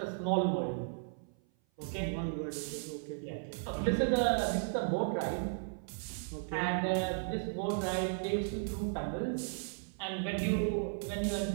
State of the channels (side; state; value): left; silent; 54 dB below the other